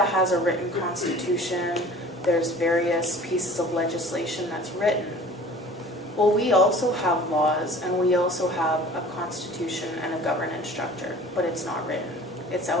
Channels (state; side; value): normal; both; correlation 0.46